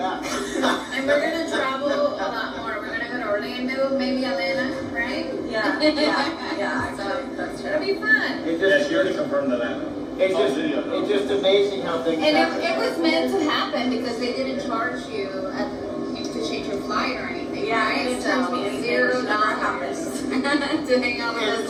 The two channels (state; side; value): identical; both; correlation 1.00